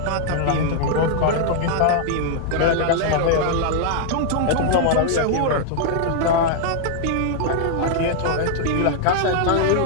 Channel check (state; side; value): different; both; correlation -0.01